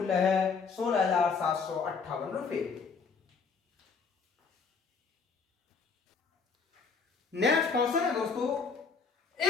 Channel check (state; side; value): quieter; right; 5.2 dB